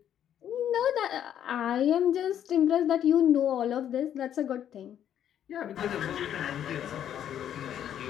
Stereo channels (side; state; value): right; quieter; 10.0 dB